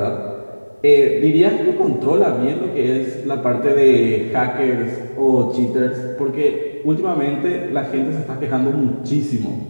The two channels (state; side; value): inverted; both; correlation -1.00